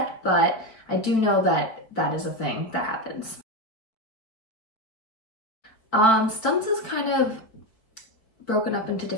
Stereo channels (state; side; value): late; right; 4.5 ms